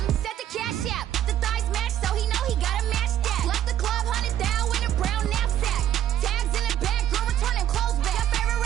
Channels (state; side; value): quieter; left; 11.2 dB